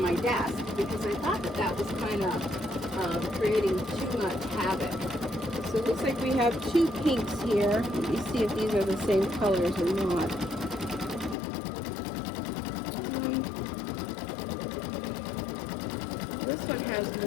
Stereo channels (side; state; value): right; drops out; at 11.4 s